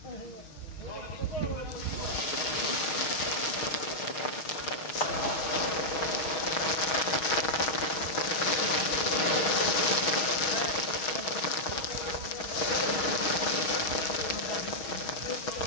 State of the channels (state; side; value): late; right; 6.3 ms